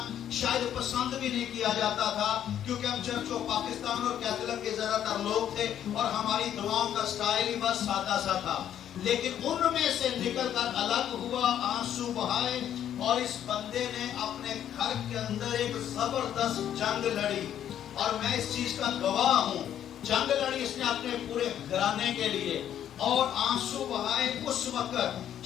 شاید پسند بھی نہیں کیا جاتا تھا، کیونکہ ہم چرچ و پاکستان اور کیتھولک کے زیادہ تر لوگ تھے اور ہماری دعاؤں کا سٹائل ہی بس سادہ سا تھا۔ لیکن ان میں سے نکل کر الگ ہوا، آنسو بہائے، اور اس بندے نے اپنے گھر کے اندر ایک زبردست جنگ لڑی، اور میں اس چیز کا گواہ ہوں۔ جنگ لڑی اس نے اپنے پورے گھرانے کے لیے، اور آنسو بہائے۔ اس وقت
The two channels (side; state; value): right; quieter; 10.3 dB